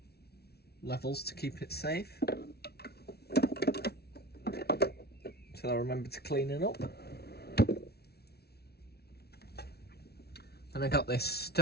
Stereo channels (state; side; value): late; right; 0.46 ms